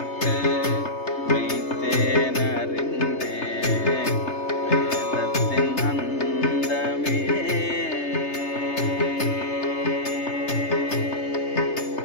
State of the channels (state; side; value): late; right; 3.3 ms